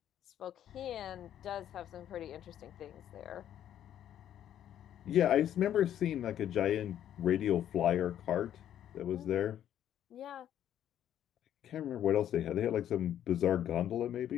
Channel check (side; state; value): right; quieter; 10.7 dB